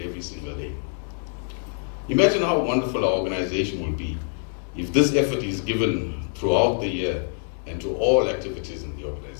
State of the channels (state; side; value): silent; right; 62 dB below the other